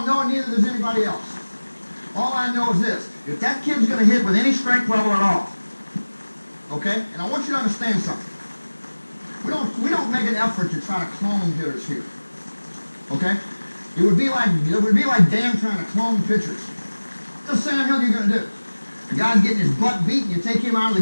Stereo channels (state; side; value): inverted; both; correlation -1.00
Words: know, and neither does anybody else. All I know is this. If that kid's going to hit with any strength level at all, okay? And I want you to understand something. We don't make an effort to try to clone hitters here. Okay? It would be like Dan trying to clone pitchers. What the hell are you going to do? The guy's getting his butt beat, and you take him out